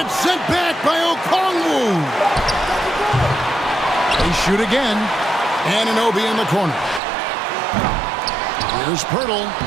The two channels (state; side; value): drops out; left; at 7.0 s